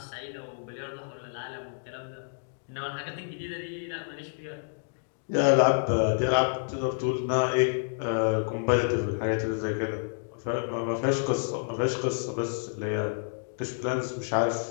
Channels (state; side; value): silent; right; digital silence